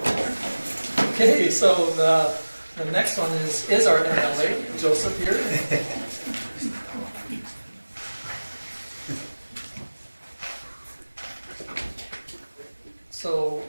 Okay, so the next one is our MLA, Joseph here. So,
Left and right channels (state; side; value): inverted; both; correlation -1.00